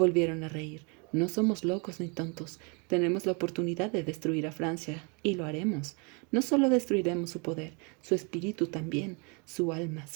a reír. «No somos locos ni tontos. Tenemos la oportunidad de destruir a Francia, y lo haremos. No solo destruiremos su poder, su espíritu también, su alma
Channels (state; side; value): quieter; left; 33.5 dB